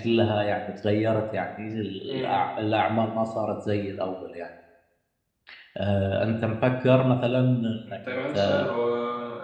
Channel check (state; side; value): identical; both; correlation 1.00